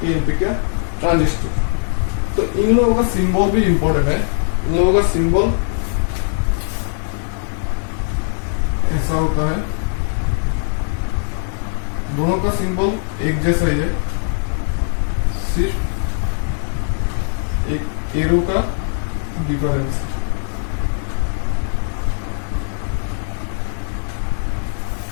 का ट्रांजिस्टर। तो इन लोगों का सिंबल भी इंपॉर्टेंट है। इन लोगों का सिंबल ऐसा होता है, दोनों का सिंबल एक जैसा ही है, सिर्फ एक एरो का डिफरेंस।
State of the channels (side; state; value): right; silent; digital silence